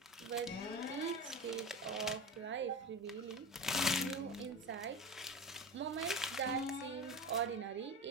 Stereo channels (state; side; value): normal; both; correlation 0.26